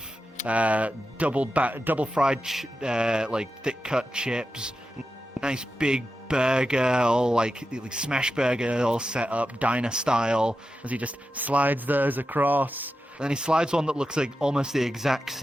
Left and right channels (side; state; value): both; normal; correlation 0.90